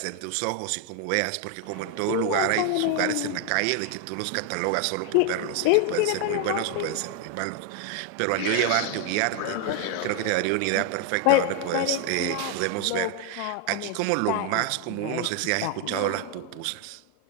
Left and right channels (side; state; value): both; different; correlation 0.01